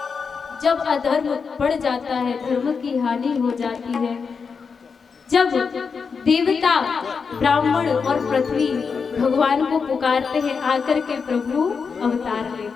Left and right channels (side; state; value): right; quieter; 5.5 dB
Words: जब अधर्म बढ़ जाता है, धर्म की हानि हो जाती है, जब देवता ब्राह्मण और पृथ्वी भगवान को पुकारते हैं, आकर के प्रभु अवतार